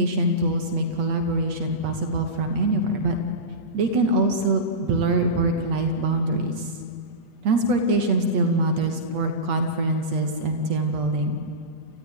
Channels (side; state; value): left; late; 8.3 ms